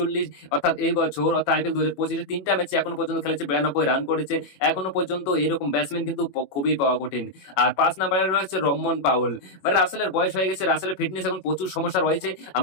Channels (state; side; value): late; right; 21 ms